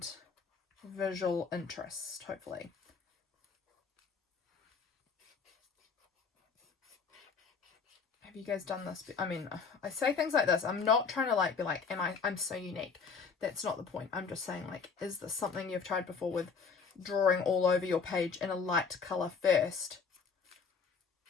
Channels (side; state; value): right; quieter; 5.4 dB